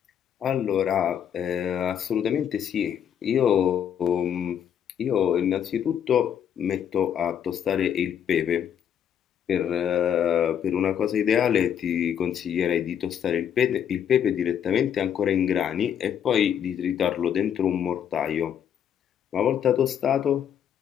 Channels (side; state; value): right; quieter; 8.9 dB